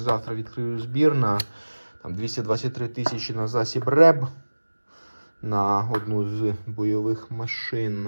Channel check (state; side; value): inverted; both; correlation -1.00